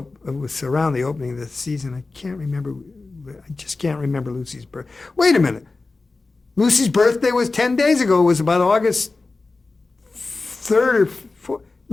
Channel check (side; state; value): right; quieter; 3.6 dB